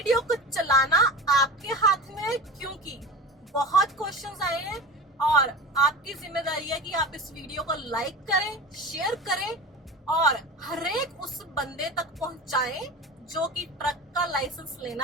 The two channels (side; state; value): both; normal; correlation 0.32